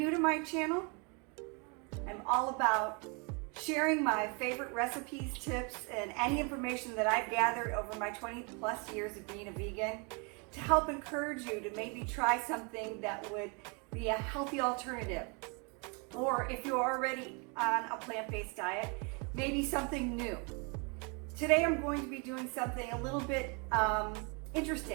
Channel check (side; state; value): left; quieter; 33.4 dB